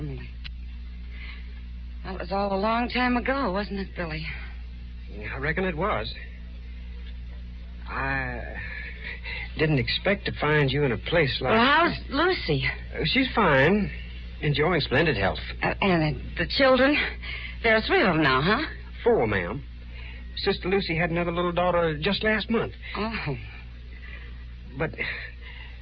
That was all a long time ago, wasn't it, Billy? I reckon it was. I didn't expect to find you in a place like... Well, how's Lucy? She's fine. Enjoying splendid health. And the children? There are 3 of them now, huh? 4, ma'am. Sister Lucy had another little daughter just last month. Oh. But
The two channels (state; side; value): identical; both; correlation 1.00